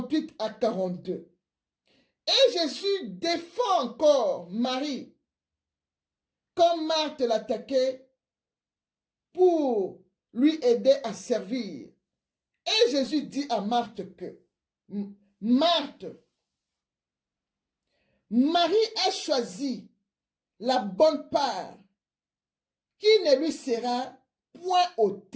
à 42. Et Jésus défend encore Marie, comme Marthe l'attaquait, pour lui aider à servir. Et Jésus dit à Marthe que, Marthe, Marie a choisi la bonne part qui ne lui sera point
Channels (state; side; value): identical; both; correlation 1.00